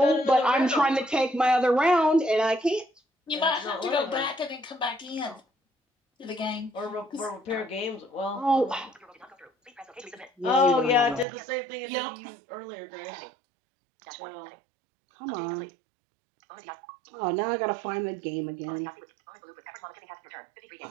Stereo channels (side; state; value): left; drops out; at 11.2 s